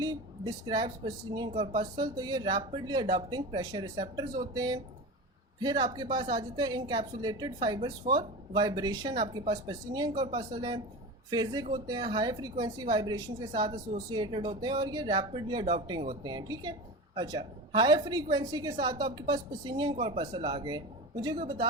describes Pacinian corpuscle, तो ये रैपिडली अडॉप्टिंग प्रेशर रिसेप्टर्स होते हैं। फिर आपके पास आ जाते हैं इनकैप्सुलेटेड फाइबर्स फॉर वाइब्रेशन, आपके पास पसिनियन कॉर्पस्कल है। फेजिक होते हैं, हाई फ्रीक्वेंसी वाइब्रेशन के साथ एसोसिएटेड होते हैं और ये रैपिडली अडॉप्टिंग होते हैं, ठीक है। अच्छा, हाई फ्रीक्वेंसी के साथ तो आपके पास पसिनियन कॉर्पस्कल आ गए। मुझे कोई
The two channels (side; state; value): both; normal; correlation 0.27